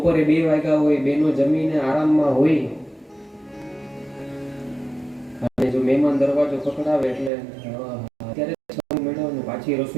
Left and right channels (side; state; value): left; drops out; at 7.3 s